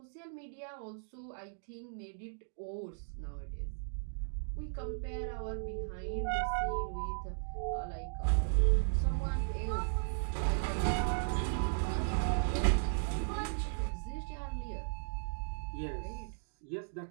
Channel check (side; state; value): left; silent; digital silence